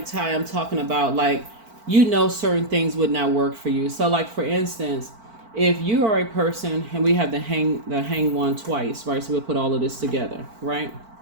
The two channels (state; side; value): late; left; 4.5 ms